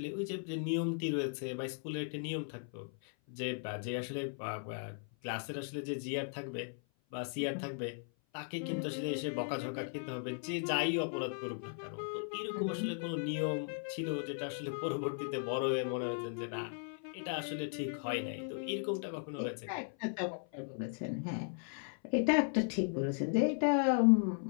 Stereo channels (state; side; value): silent; right; 53 dB below the other